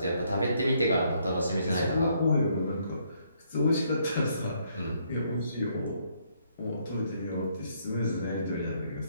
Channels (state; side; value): inverted; both; correlation -0.71